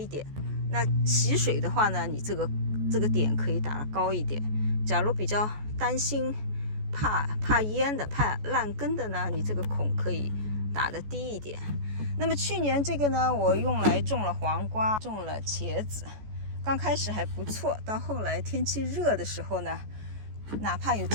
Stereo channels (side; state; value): left; late; 14 ms